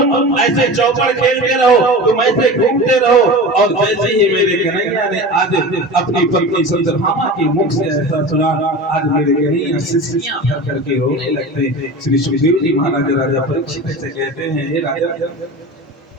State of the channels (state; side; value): normal; both; correlation 0.32